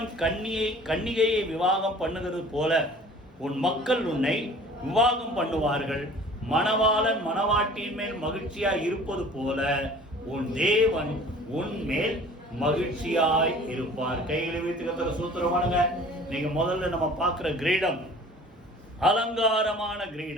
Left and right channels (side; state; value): both; normal; correlation 0.47